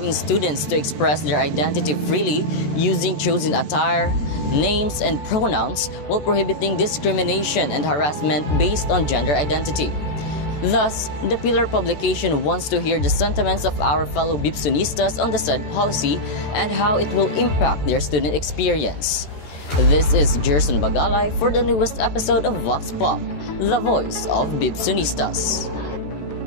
students to express their identity freely using chosen attire, names, and pronouns while prohibiting discrimination and harassment based on gender identity. Thus, the Pillar publication wants to hear the sentiments of our fellow Bipsonistas on the said policy and how it will impact their student experience. This is Jerson Bagalay for the newest episode of Vox Pop, the voice of Bipsonistas.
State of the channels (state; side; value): late; right; 14 ms